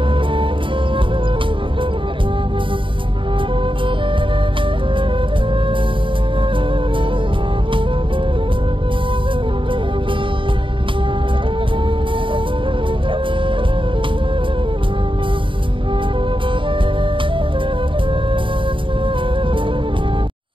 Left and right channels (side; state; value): left; late; 0.25 ms